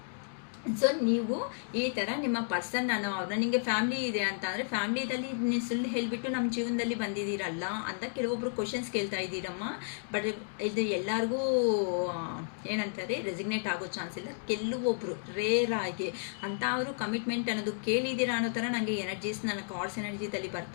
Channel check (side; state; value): right; silent; digital silence